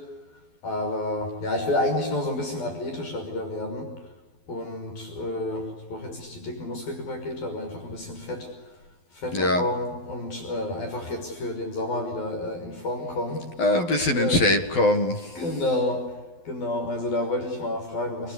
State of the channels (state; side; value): late; right; 12 ms